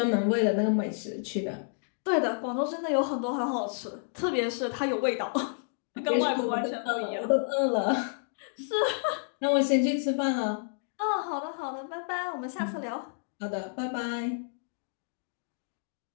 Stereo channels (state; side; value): silent; right; digital silence